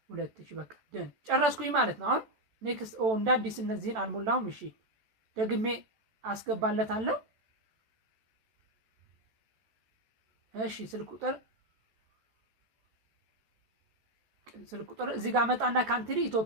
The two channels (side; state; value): left; late; 14 ms